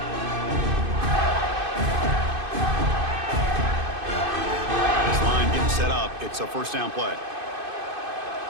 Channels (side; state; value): left; late; 2.5 ms